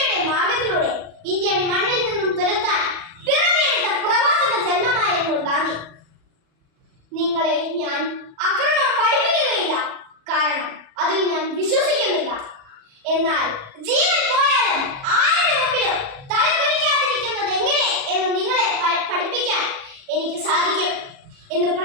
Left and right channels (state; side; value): late; left; 37 ms